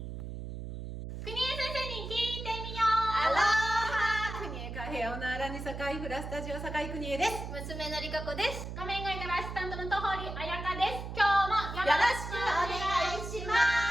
国枝先生に聞いてみよアロハ国枝カフェオナーラニサカイフラスタジオサカイ国枝です。娘のりかこです。画面外からアシスタントの戸堀彩香です。今日もよろしくお願いしま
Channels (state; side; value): noise; right; hum, 8 dB below the sound